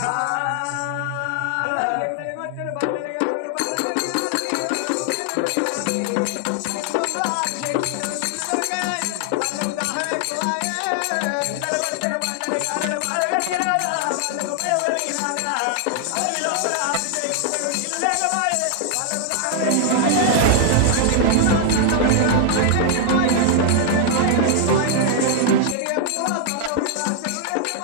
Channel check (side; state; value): both; different; correlation 0.00